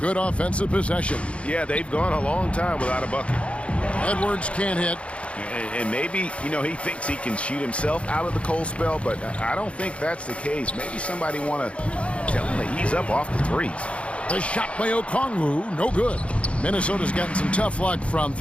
offensive possession. Yeah, they've gone a long time without a bucket. Edwards can't hit. And maybe, you know, he thinks he can shoot himself out of the cold spell, but I don't think that's the case. Maybe somebody want to tell him to ease up off the threes. The shot by Okongwu, no good. Minnesota's gotten some tough luck from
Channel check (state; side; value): late; right; 0.061 ms